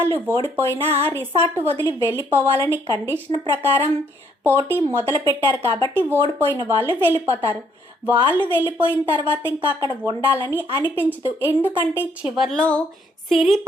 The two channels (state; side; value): normal; both; correlation 0.68